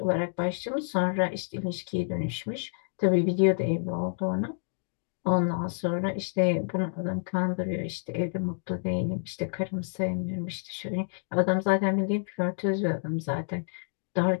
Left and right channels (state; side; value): silent; right; digital silence